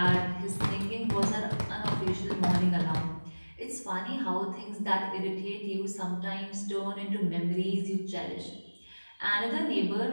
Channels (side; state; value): both; inverted; correlation -1.00